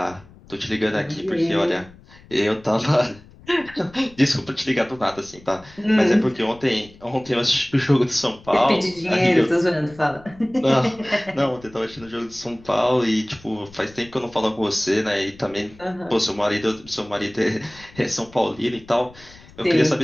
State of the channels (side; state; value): left; noise; rumble, 23 dB below the sound